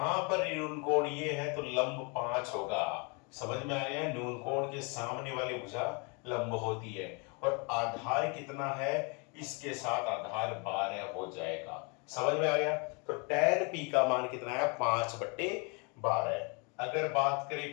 पर न्यून कोण ये है तो लंब 5 होगा। समझ में आया, न्यून कोण के सामने वाली भुजा लंब होती है, और आधार कितना है, इसके साथ आधार 12 हो जाएगा। समझ में आ गया? तो tan p का मान कितना है, 5/12। अगर बात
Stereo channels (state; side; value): quieter; right; 32.5 dB